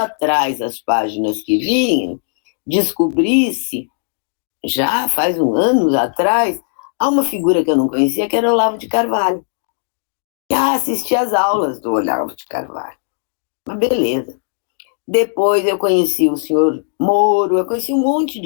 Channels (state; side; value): silent; right; digital silence